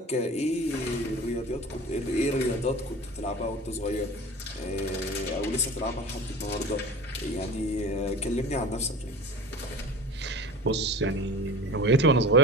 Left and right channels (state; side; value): normal; both; correlation 0.36